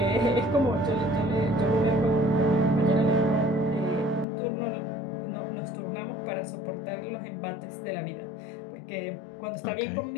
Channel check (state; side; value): drops out; right; at 4.2 s